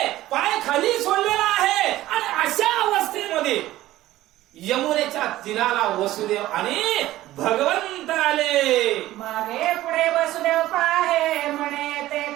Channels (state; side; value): quieter; left; 15.5 dB